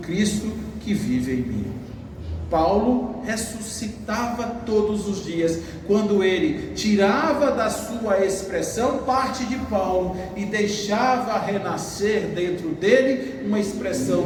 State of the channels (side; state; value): both; identical; correlation 1.00